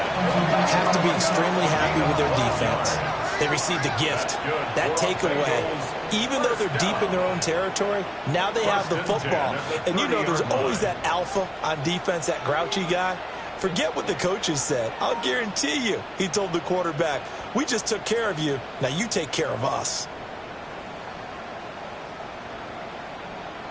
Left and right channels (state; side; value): identical; both; correlation 1.00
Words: Have to be extremely happy with their defense. They received a gift. That takeaway, even though they're deep in their own territory, now they have the football. And you know there's always that alpha on defense, that grouchy guy. Forget what the coaches said. I'll guarantee you, he told the quarterback, we just took care of you. Now you take care of us.